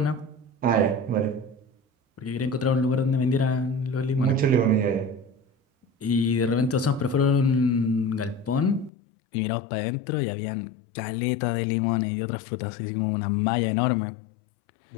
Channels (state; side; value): drops out; right; at 8.9 s